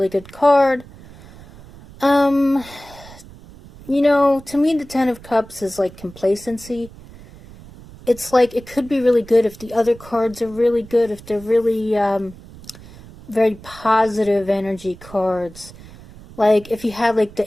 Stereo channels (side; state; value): right; noise; rumble, 20 dB below the sound